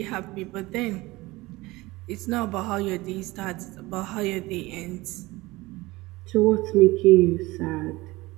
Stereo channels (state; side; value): quieter; left; 20.7 dB